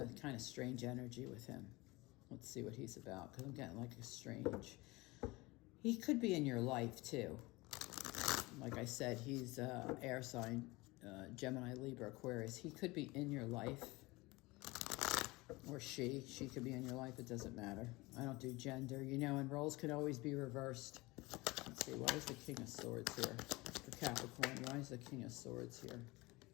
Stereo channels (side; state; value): right; quieter; 22.4 dB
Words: a kind of strange energy with him. Let's see what he's about, because I'm getting like a strange... He could be in your life, too. Like I said, he's air sign, Gemini, Libra, Aquarius. He could be in your life. Or she could be in your life. It doesn't matter. I don't do gender, and roles can always be reversed. Let's see, why is the King of Swords here? For Capricorn, why is the King of Swords here?